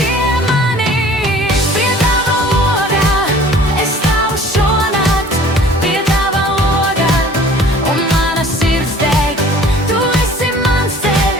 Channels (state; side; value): normal; both; correlation 0.49